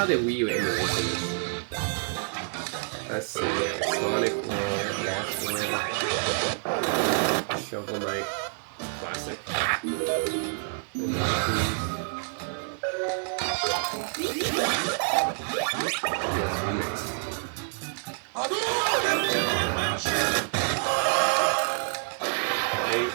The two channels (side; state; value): left; silent; digital silence